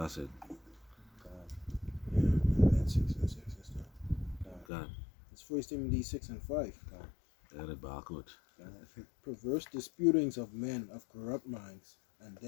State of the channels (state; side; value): drops out; right; at 4.7 s